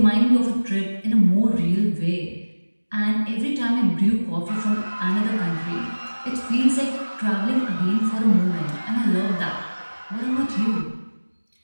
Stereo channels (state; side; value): inverted; both; correlation -1.00